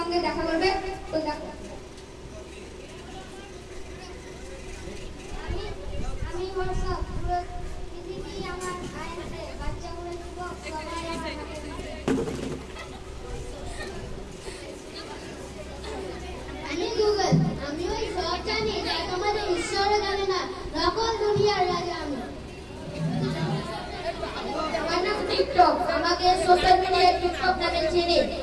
দেখা করবে। তো দেখো আমি হোয়াটসঅ্যাপ, পুরো পৃথিবী আমার আয়নাতে, বাচ্চাগুলো যুবক সবাই আমার হাতে। আমি গুগল, আমি ওই সব জানি যা তোমাদের ঈশ্বরও জানে না, নকল দুনিয়ার রাজা আমি। আমার নাম টিকটক, আমাকে সোশ্যাল মিডিয়ায় টিকটক নামে চিনি।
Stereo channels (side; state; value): both; identical; correlation 1.00